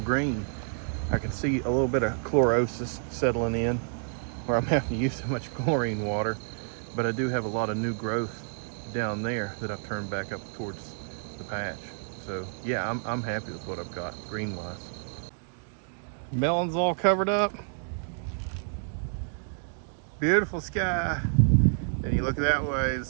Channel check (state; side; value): silent; left; 58 dB below the other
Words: green. I can see a little bit of chlorosis settling in where I'm having to use so much chlorine water, but I do have a lot of new growth down there that I've turned back up towards the patch. So yeah, I'm happy with what I've got green wise. Melon's all covered up. Beautiful sky. And you look that way,